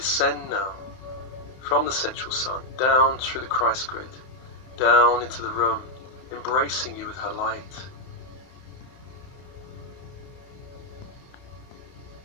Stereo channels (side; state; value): right; late; 31 ms